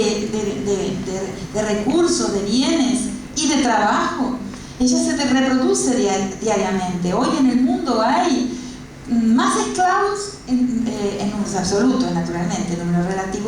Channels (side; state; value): both; identical; correlation 1.00